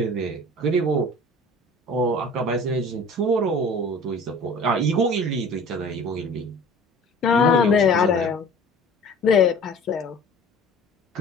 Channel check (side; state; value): both; normal; correlation 0.44